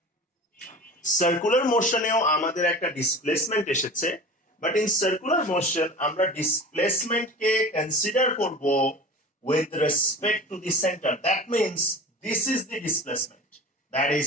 সার্কুলার মোশনেও আমাদের একটা ডিসপ্লেসমেন্ট এসেছে, বাট ইন সার্কুলার মোশন আমরা ডিসপ্লেসমেন্টকে কনসিডার করব with respect to the center. That means this is the displacement, that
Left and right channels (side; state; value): both; normal; correlation 0.36